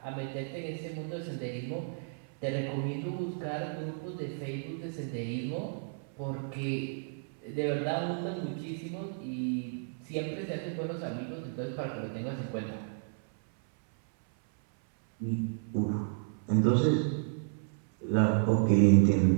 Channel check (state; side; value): silent; left; 56 dB below the other